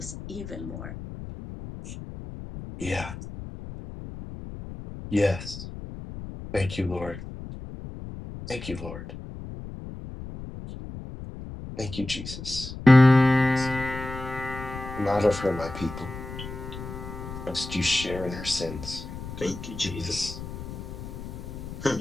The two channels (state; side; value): noise; left; rumble, 10 dB below the sound